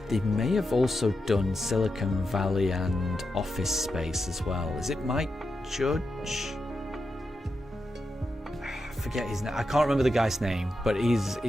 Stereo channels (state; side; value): normal; both; correlation 0.88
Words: they may have also done Silicon Valley and Office Space as well. Is it Mike Judge? I forget his name. I can't remember the guy's name, but